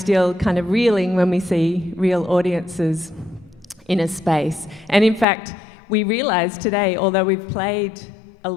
kind of reeling when we see real audiences in a space. And in fact, we realised today, although we've played a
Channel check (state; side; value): drops out; right; at 5.2 s